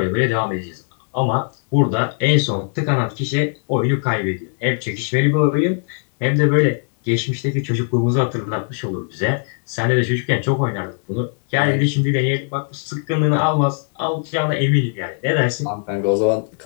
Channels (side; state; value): right; silent; 56 dB below the other